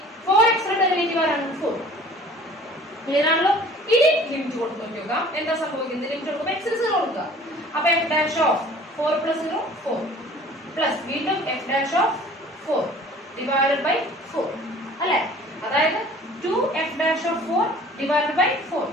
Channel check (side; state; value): both; normal; correlation 0.48